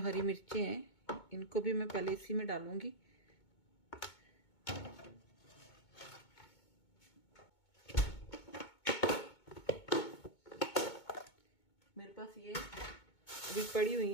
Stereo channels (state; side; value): late; right; 2.2 ms